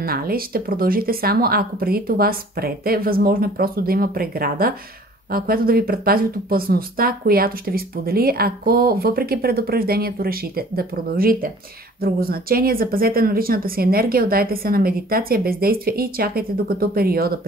Ще продължите само ако преди това спрете. Възможно е просто да има преграда, която да ви предпази от опасността, която ще ви сподели, ако въпреки предупреждението решите да продължите. Друго значение, запазете на личната си енергия, отдайте се на медитация, бездействие и чакайте докато периода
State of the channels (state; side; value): normal; both; correlation 0.51